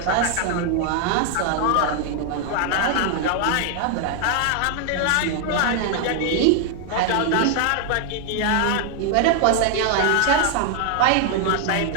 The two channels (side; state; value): both; different; correlation 0.00